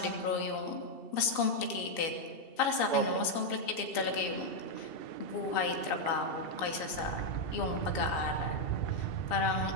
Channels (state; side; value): late; right; 2.7 ms